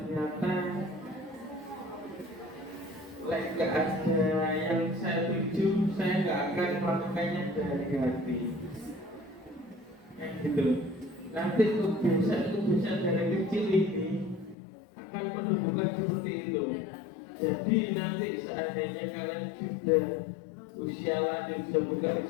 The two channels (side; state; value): right; drops out; at 14.6 s